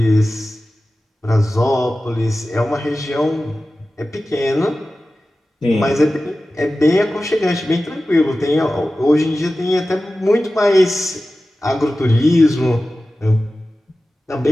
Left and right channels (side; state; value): both; normal; correlation 0.95